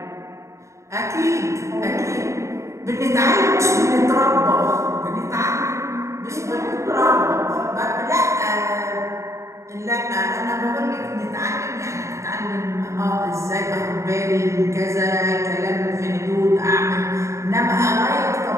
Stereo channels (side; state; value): left; late; 0.14 ms